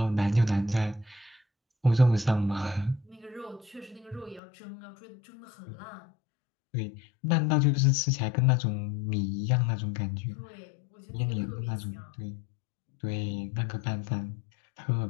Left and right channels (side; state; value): right; drops out; at 4.4 s